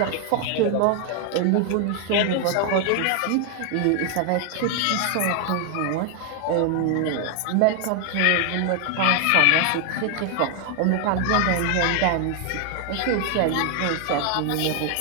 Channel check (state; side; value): different; both; correlation 0.00